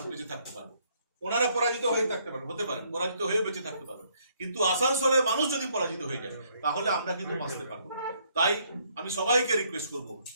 বেঁচে থাকতে পারবো, ওনারা পরাজিত হয়ে থাকতে পারবে, হতে পারে পরাজিত হয়ে বেঁচে থাকতে পারবে, কিন্তু আসানসোলের মানুষ যদি পরাজিত হয়ে যায় তাহলে আমরা কিন্তু বাঁচতে পারবো। তাই আমি সবাইকে রিকোয়েস্ট করব,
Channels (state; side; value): inverted; both; correlation -0.69